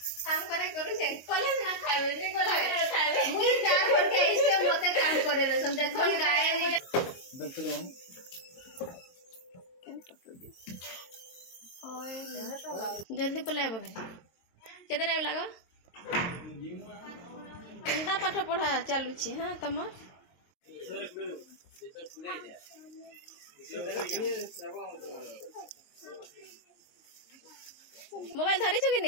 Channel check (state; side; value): late; right; 22 ms